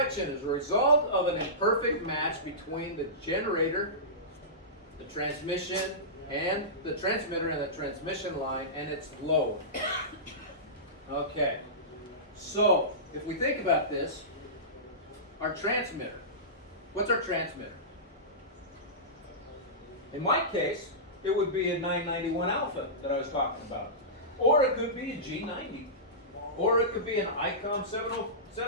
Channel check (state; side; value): normal; both; correlation -0.19